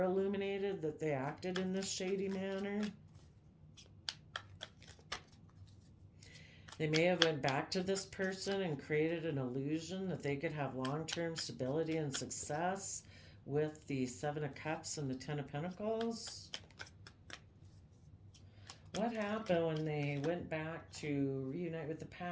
illuminated that they acted in this shady manner. They may have went back to this person and created an illusion that they could have long-term stability and success with the Seven of Cups and the Ten of Pentacles. What happened when they went back to reunite with the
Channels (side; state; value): both; identical; correlation 1.00